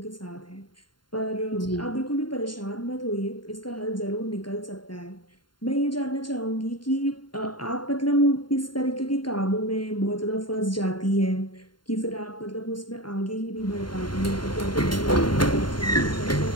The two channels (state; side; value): late; right; 0.72 ms